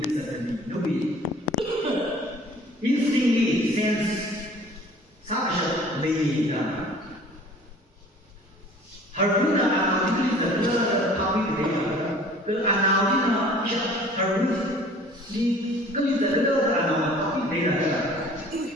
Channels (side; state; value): both; normal; correlation 0.49